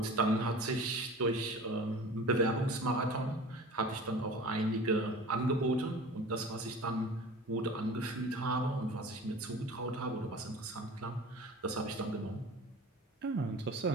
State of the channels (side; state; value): both; normal; correlation 0.39